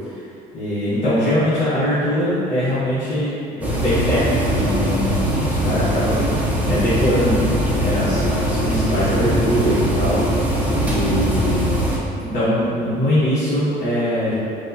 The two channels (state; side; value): normal; both; correlation 0.51